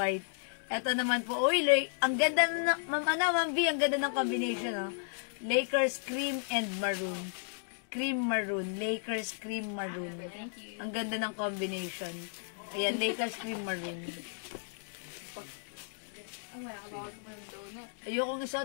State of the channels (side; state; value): right; silent; digital silence